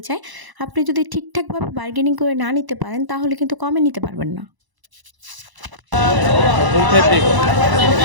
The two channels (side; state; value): left; late; 1.0 ms